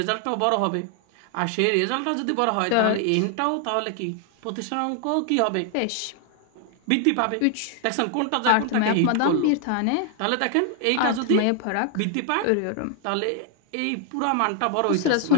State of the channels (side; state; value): both; different; correlation 0.00